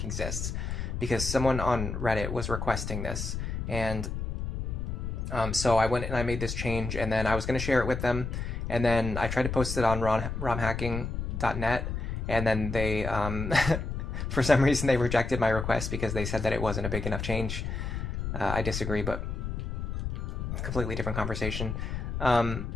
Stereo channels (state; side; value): noise; left; rumble, 4 dB below the sound